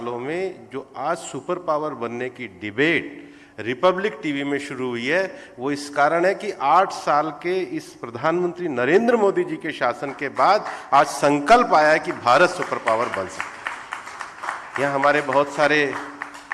में जो आज सुपर पावर बनने की डिबेट रिपब्लिक टीवी में शुरू हुई है, वो इस कारण है कि 8 साल के इस प्रधानमंत्री नरेंद्र मोदी जी के शासन के बाद आज संकल्प आया है कि भारत सुपर पावर बन सकता है। यहाँ हमारे बहुत सारे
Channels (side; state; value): both; identical; correlation 1.00